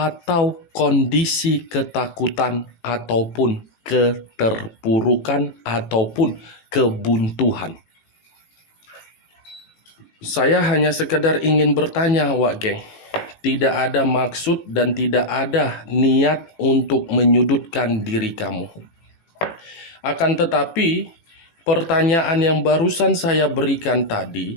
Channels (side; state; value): right; late; 18 ms